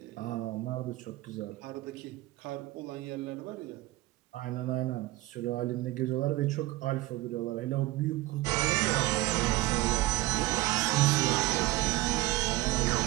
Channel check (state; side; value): quieter; left; 18.4 dB